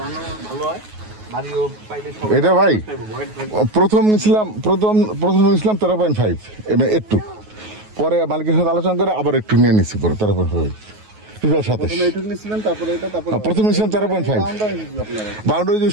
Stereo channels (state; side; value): late; left; 9.4 ms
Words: ভালো হয়। এটা ভাই প্রথম নিয়েছিলাম 13.5 একটু পরে মালিকের সাথে আলোচনা করে আবার একটু নিয়ে নিচ্ছি পরে 13.5 প্রথম নিয়েছিলাম 13.5 বাউন্ডারি যে